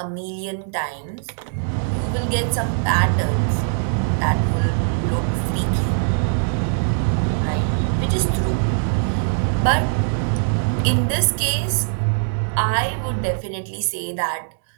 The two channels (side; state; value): left; silent; 65 dB below the other